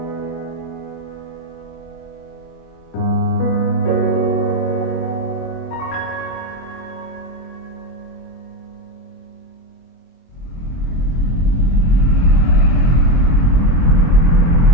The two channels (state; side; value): late; right; 24 ms